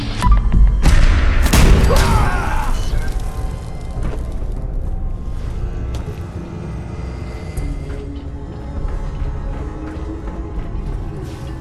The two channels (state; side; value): identical; both; correlation 1.00